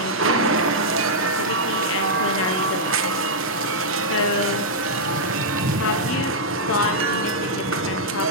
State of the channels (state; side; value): normal; both; correlation -0.07